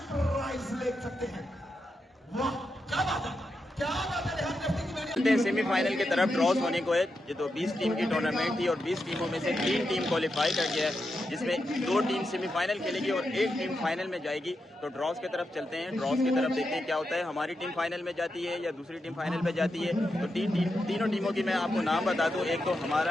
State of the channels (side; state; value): both; normal; correlation 0.86